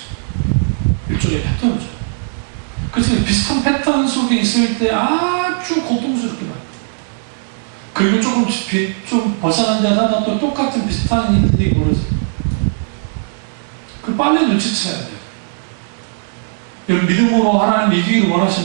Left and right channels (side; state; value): left; silent; digital silence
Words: 일종의 패턴이죠. 그래서 비슷한 패턴 속에 있을 때 아주 고통스럽게 만요. 그리고 좀 벗어난 데 하나 또 똑같은 비슷한 일들이 벌어져요. 그 빨리 눈치채야 돼요. 여러분 믿음으로 하나님 이기기를